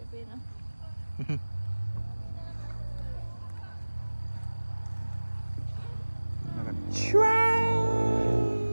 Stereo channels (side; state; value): both; inverted; correlation -1.00